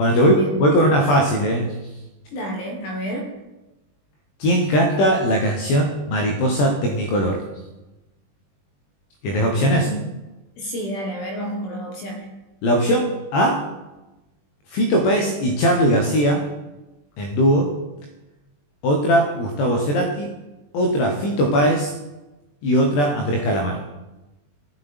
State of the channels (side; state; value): right; late; 21 ms